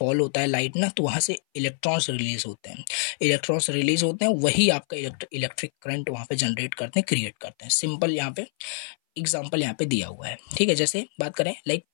होता है लाइट ना, तो वहाँ से इलेक्ट्रॉन्स रिलीज होते हैं, वही आपका इलेक्ट्रिक करंट वहाँ पे जनरेट करते हैं, क्रिएट करते हैं, सिंपल यहाँ पे एग्जाम्पल यहाँ पे दिया हुआ है, ठीक है। जैसे बात करें, लाइक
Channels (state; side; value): silent; right; 58 dB below the other